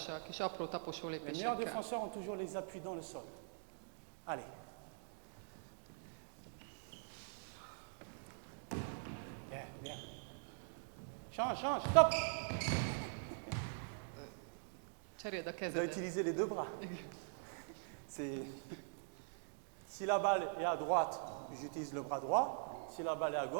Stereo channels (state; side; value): silent; left; digital silence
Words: kis apró taposó Les meilleurs lépésekkel. défenseurs ont toujours les appuis dans le sol. Allez. Bien, bien. Change, change, stop! Cseréld a Je dois kezedet. utiliser les deux bras. Si la balle est à droite, j'utilise le bras droit. Si la balle est à